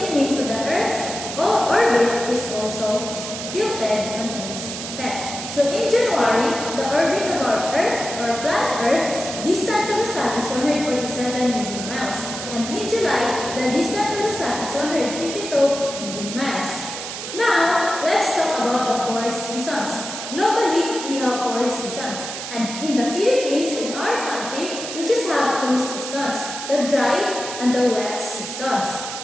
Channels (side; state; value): right; noise; hiss, 7 dB below the sound